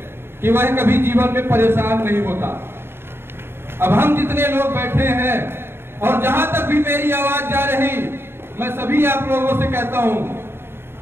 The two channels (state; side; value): late; left; 0.11 ms